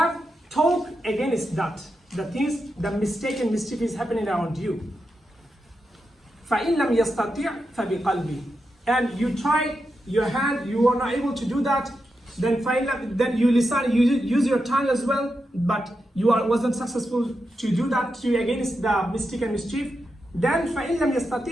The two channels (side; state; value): both; normal; correlation 0.87